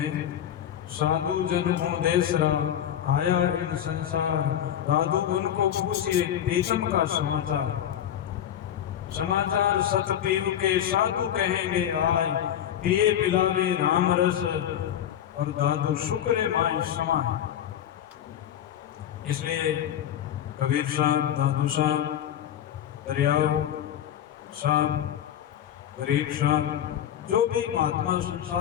साधु जन को देसरा आया इन संसार, दादू उनको पूछिए प्रीतम का समाचार, समाचार सत पीव के साधु कहेंगे आए, पिए पिलावे राम रस और दादू शुक्र माई समाए। इसलिए कबीर साहब, दादू साहब, दरियाव साहब, गरीब साहब, जो भी महात्मा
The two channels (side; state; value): right; quieter; 10.4 dB